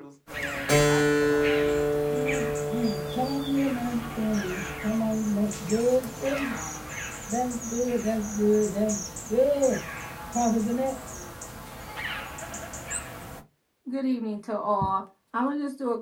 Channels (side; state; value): both; identical; correlation 1.00